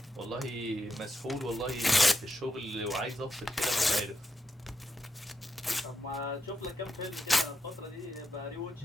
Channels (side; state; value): both; normal; correlation 0.84